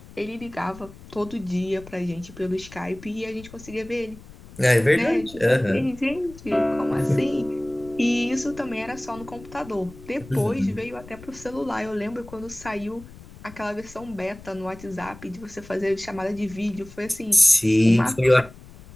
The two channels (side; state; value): left; noise; rumble, 19 dB below the sound